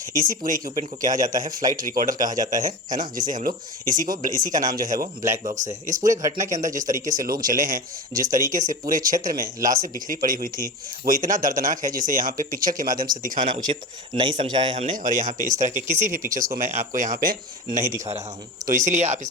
इसी पूरे इक्विपमेंट को कहा जाता है फ्लाइट रिकॉर्डर कहा जाता है ना, जिसे हम लोग इसी का नाम जो है वो ब्लैक बॉक्स है। इस पूरे घटना के अंदर जिस तरीके से लोग जले हैं, जिस तरीके से पूरे क्षेत्र में लाशें बिखरी पड़ी हुई थी, वो इतना दर्दनाक है जिसे यहाँ पे पिक्चर के माध्यम से दिखाना उचित नहीं समझा है हमने, और यहाँ पे इस तरह के किसी भी पिक्चर्स को मैं आपको यहाँ पे नहीं दिखा रहा हूँ। तो इसीलिए आप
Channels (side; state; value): both; normal; correlation 0.27